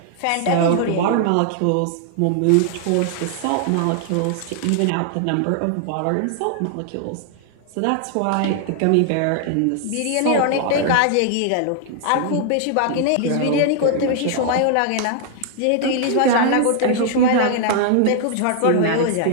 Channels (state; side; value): different; both; correlation 0.00